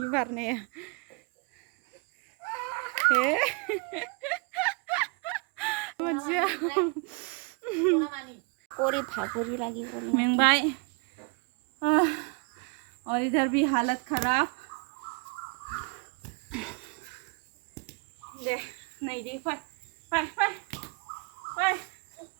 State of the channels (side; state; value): left; quieter; 33.2 dB